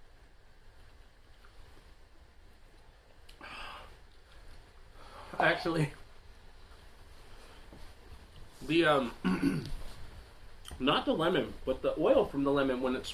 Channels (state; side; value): identical; both; correlation 1.00